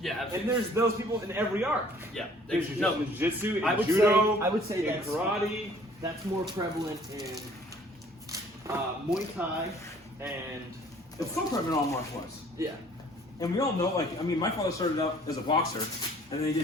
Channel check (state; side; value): normal; both; correlation 0.55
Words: absolutely. And there's those people in every art. Yeah. There's jiu-jitsu, I would judo, say- I would say in that's- karate. That's more prevalent in Muay Thai and It's so prevalent in all martial arts. yeah. And we all know, like, I mean, my father started out as a boxer, and then he